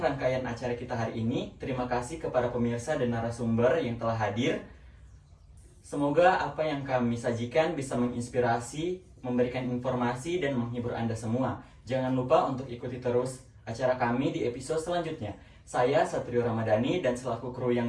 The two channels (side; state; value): both; identical; correlation 1.00